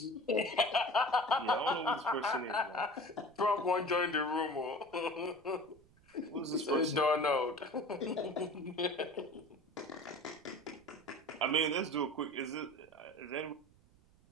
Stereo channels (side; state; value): right; noise; rumble, 29 dB below the sound